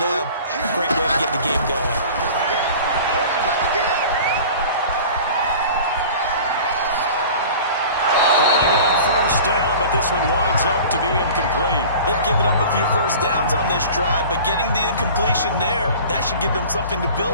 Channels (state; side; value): inverted; both; correlation -0.41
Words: Great way to get the game going. Falling on first down, but this one winds up to be incomplete. They've given up a few first downs on this drive, but getting the incompletion there, that should give them something to